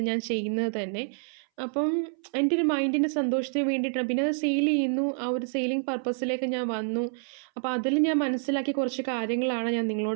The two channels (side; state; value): left; silent; 60 dB below the other